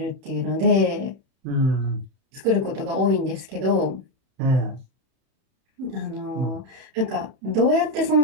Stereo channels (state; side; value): late; left; 31 ms